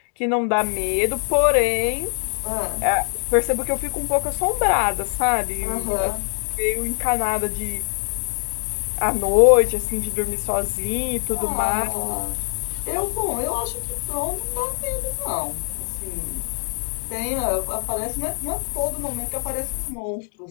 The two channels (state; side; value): silent; right; digital silence